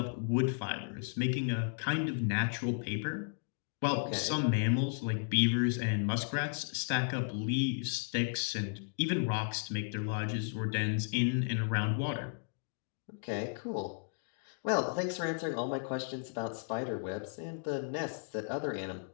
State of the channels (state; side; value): silent; right; digital silence